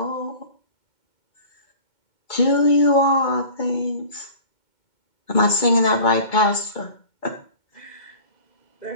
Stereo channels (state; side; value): late; right; 2.2 ms